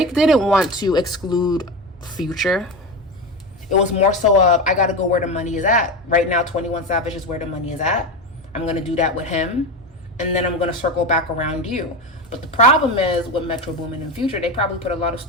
didn't want to exclude Future. It was more so of, I got to go where the money is at. Right now, 21 Savage is where the money is at. I'm going to do that with him. And then I'm going to circle back around you. But the problem is with Metro Boomin and Future, they probably put a lot of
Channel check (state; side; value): normal; both; correlation 0.20